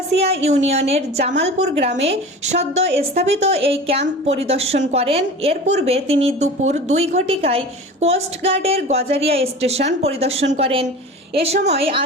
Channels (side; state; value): both; normal; correlation 0.36